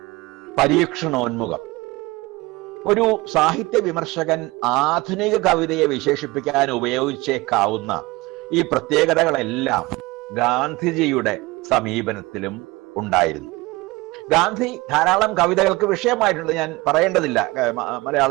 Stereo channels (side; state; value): left; quieter; 22.0 dB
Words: പരീക്ഷണോന്മുഖം. ഒരു സാഹിത്യ വിമർശകൻ ആധുനിക കവിതയെ വിശേഷിപ്പിക്കാൻ ഉപയോഗിച്ചേക്കാവുന്ന ഈ പ്രത്യേകതകളെല്ലാം ഗാന്ധിജിയുടെ സമീപനത്തിലും ഉണ്ടായിരുന്നു. ഗാന്ധി ധാരാളം കവിതകൾക്ക് വിഷയമായിട്ടുണ്ട്. ഞാൻ പറയേണ്ടതില്ല.